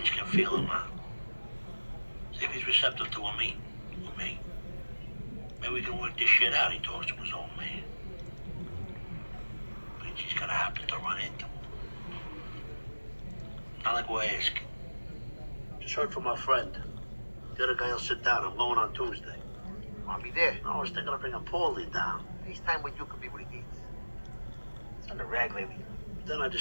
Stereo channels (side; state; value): both; inverted; correlation -1.00